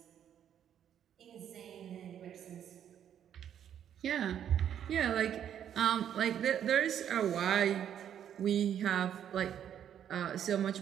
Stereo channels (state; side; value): quieter; left; 9.6 dB